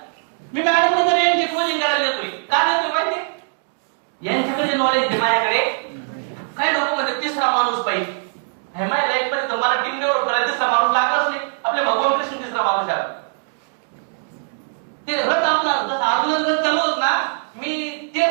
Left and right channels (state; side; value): silent; left; digital silence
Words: मी मॅडम तर यांची कोचिंग करायला येतोय. का देतोय माहिती? यांच्याकडे जे नॉलेज आहे माझ्याकडे. काही लोक म्हणजे तिसरा माणूस पाहिजे. हे माझ्या लाईफ मध्ये तर मला टीम डेव्हलप करायला तिसरा माणूस लागलाच नाही. आपले भगवान कृष्ण तिसरा माणूस आहे. ते रथ आपला जसं अर्जुन रथ चालवत ना, मी ते